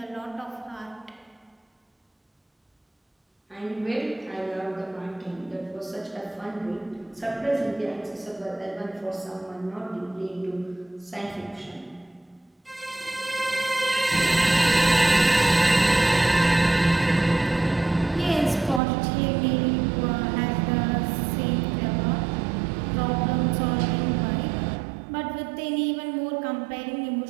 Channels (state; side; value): drops out; left; at 18.8 s